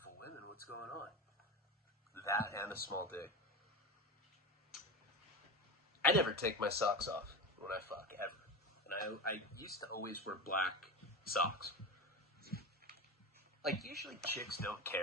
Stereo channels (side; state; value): both; normal; correlation 0.21